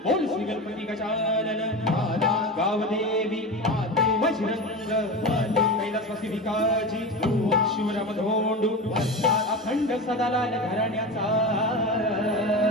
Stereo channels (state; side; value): normal; both; correlation 0.25